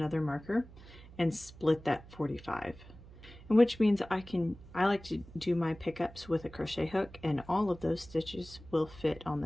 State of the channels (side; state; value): right; noise; hum, 19 dB below the sound